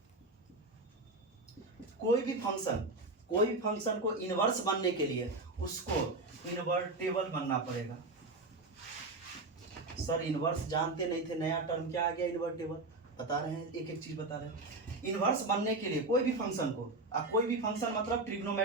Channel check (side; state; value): left; quieter; 3.1 dB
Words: कोई भी फंक्शन को इनवर्स बनने के लिए उसको इनवर्टेबल बनना पड़ेगा। सर इनवर्स जानते नहीं थे, नया टर्म क्या आ गया? इनवर्टेबल। बता रहे हैं, एक एक चीज बता रहे हैं। इनवर्स बनने के लिए कोई भी फंक्शन को, अब कोई भी फंक्शन मतलब